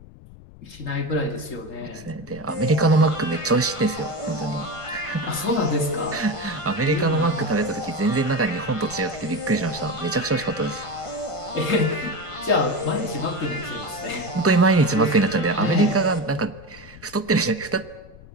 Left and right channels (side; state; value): left; noise; rumble, 20 dB below the sound